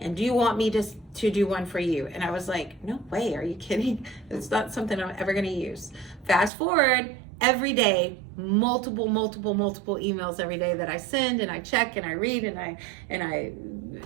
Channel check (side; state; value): left; drops out; at 6.5 s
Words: and do you want me to do one for you? And I was like, no way, are you kidding? It's not something I'm ever going to use. Fast forward, every day, multiple emails every day that I send and I check and I read and I